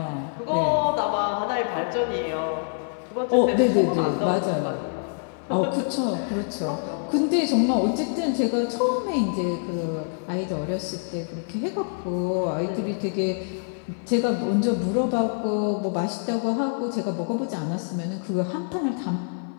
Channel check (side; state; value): right; silent; 61 dB below the other